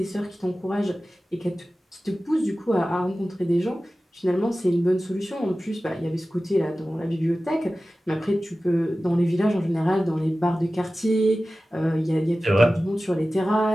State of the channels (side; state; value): both; normal; correlation 0.96